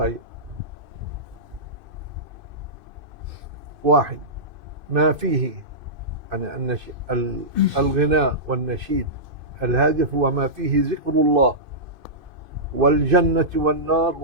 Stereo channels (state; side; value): late; left; 2.5 ms